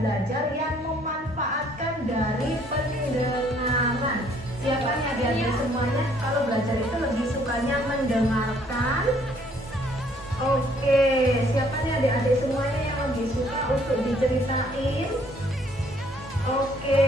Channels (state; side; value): normal; both; correlation 0.63